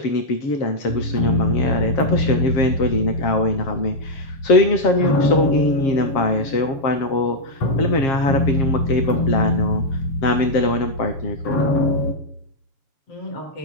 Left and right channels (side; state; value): right; late; 7.2 ms